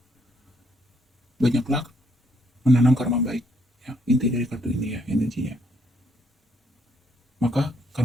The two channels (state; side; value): normal; both; correlation 0.71